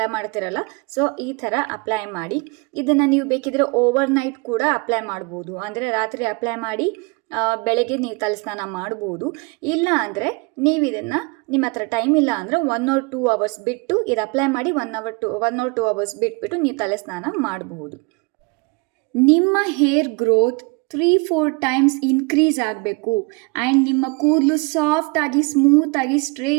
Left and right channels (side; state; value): left; quieter; 29.3 dB